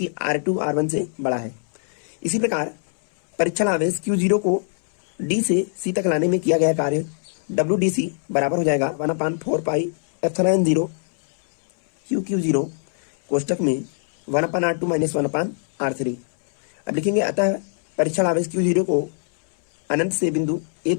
r2 r1 से बड़ा है। इसी प्रकार परीक्षण आवेश Q0 को D से C तक लाने में किया गया कार्य WDC बराबर हो जाएगा 1/4πε0 QQ0, कोष्टक में 1/r2 माइनस 1/r3। अब लिखेंगे अतः परीक्षण आवेश Q0 को अनंत से बिंदु A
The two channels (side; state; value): right; silent; 64 dB below the other